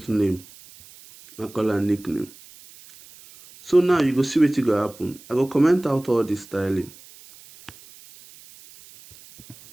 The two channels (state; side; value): noise; right; hiss, 22 dB below the sound